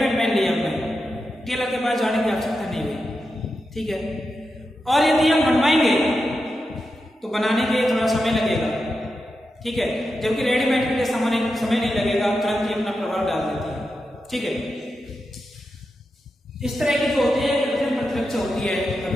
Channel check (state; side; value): normal; both; correlation 0.89